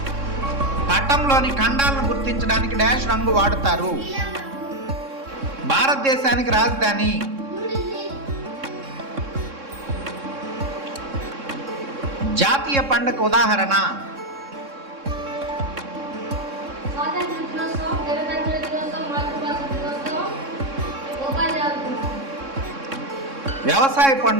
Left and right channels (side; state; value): left; late; 3.6 ms